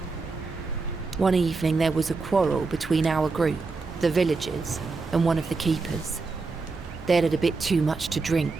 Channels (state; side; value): quieter; left; 4.1 dB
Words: One evening there was a quarrel between our group, the villagers, and one of the keepers. They'd had a bit too much to